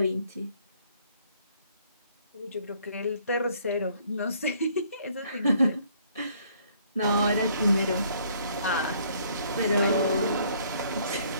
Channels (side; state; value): both; inverted; correlation -0.63